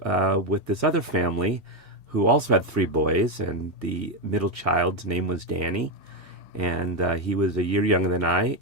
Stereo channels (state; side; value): normal; both; correlation 0.07